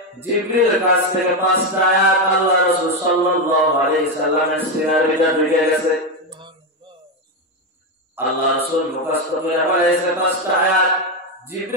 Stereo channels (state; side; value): normal; both; correlation 0.09